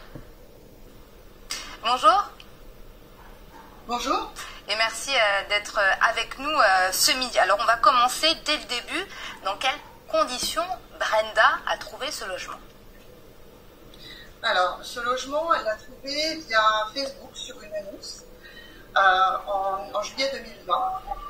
Bonjour. Bonjour. Et merci d'être avec nous ce midi. Alors on va commencer dès le début. Dans quelles conditions Brenda a trouvé ce logement? Alors, ce logement, elle l'a trouvé via Facebook sur une annonce en juillet 2020.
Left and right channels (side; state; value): both; identical; correlation 1.00